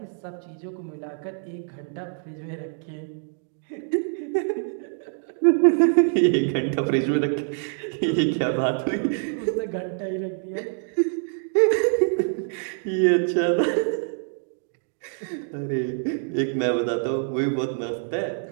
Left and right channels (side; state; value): left; silent; 61 dB below the other